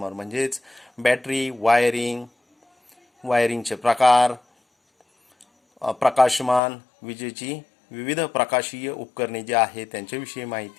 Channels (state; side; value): drops out; right; at 6.6 s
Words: म्हणजेच बॅटरी, वायरिंगचे प्रकार, प्रकाशमान, विजेची विविध प्रकाशीय उपकरणे जे आहेत त्यांच्याविषयी